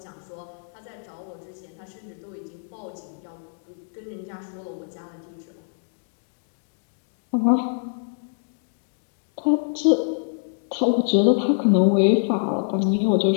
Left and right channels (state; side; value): silent; right; digital silence